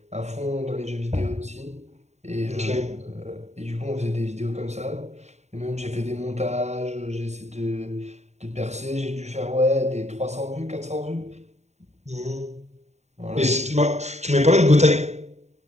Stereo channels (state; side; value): late; left; 0.32 ms